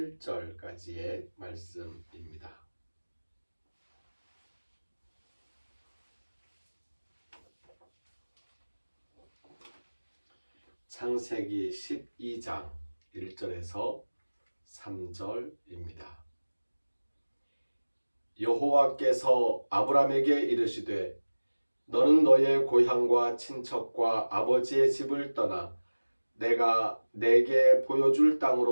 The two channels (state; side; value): inverted; both; correlation -1.00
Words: 말씀입니다. 창세기 12장 1절에서 3절입니다. 여호와께서 아브람에게 이르시되 너는 너의 고향과 친척과 아버지의 집을 떠나 내가 내게 보여줄